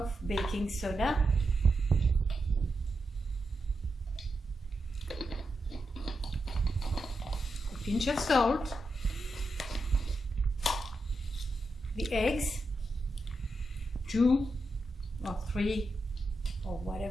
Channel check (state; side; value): normal; both; correlation 0.87